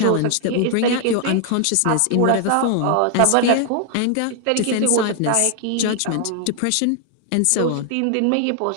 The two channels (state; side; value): different; both; correlation 0.00